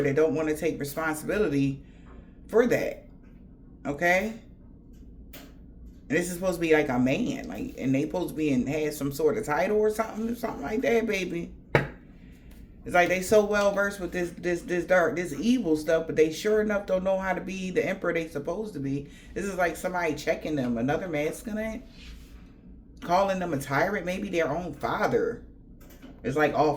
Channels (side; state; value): both; identical; correlation 1.00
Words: that don't want to take responsibility for that. Okay? And this is supposed to be like a man. Like, and they supposed to be had some sort of title or something like that, baby. It's like they so well versed with this dark, this evil stuff, but they sure enough don't know how to be the emperor they supposed to be. This is like somebody checking them, another masculine, calling them a tyrant, maybe their own father. It's like